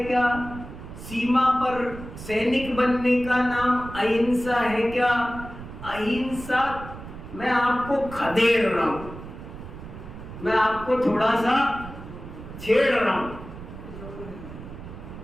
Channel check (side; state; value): right; noise; rumble, 13 dB below the sound